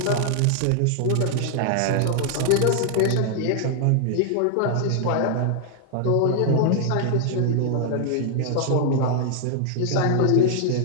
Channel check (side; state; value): both; different; correlation 0.00